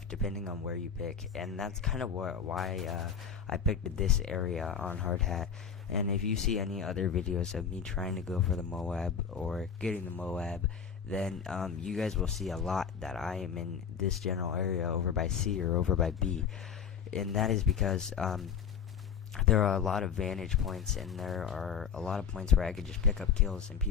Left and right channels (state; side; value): quieter; right; 7.1 dB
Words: depending on where you pick, and that's kind of why I picked this area on hard hat. And if you see any other videos of me trying to go for the MOAB or getting the MOAB, then you guys will see a lot that I am in this general area over by C or over by B. And that is because there are a lot of vantage points, and there are a lot of points where I could just pick up kills and